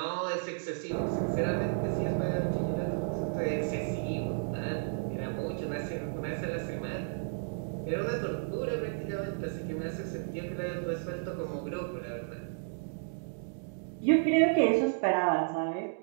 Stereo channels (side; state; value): left; silent; digital silence